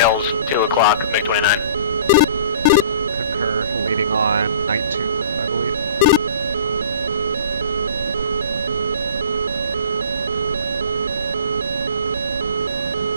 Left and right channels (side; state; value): both; inverted; correlation -0.46